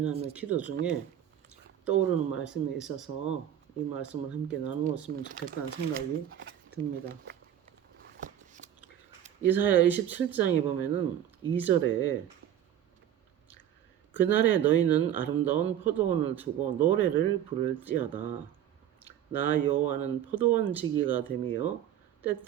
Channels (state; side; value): quieter; left; 10.7 dB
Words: 기도 중에 떠오르는 말씀이 있어서 이 말씀을 함께 나누었으면 좋겠다는 생각이 듭니다. 이사야 27장에 보면은 2절에 그날에 너희는 아름다운 포도원을 두고 노래를 부를지어다. 나 여호와는 포도원 지기가 되며